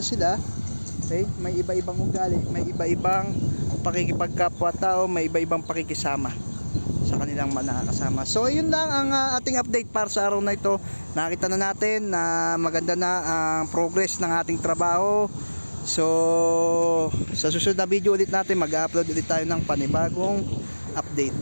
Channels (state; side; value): inverted; both; correlation -1.00